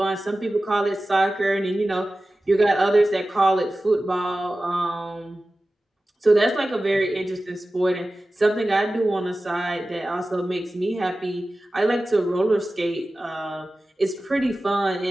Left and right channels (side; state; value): both; normal; correlation 0.95